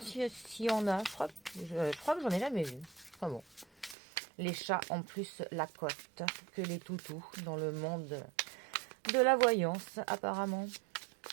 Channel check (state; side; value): drops out; left; at 4.0 s